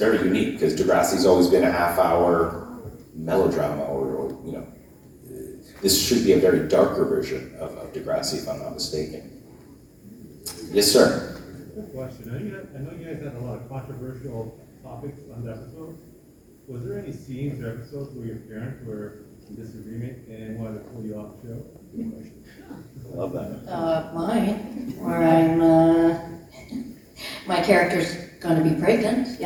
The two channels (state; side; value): identical; both; correlation 1.00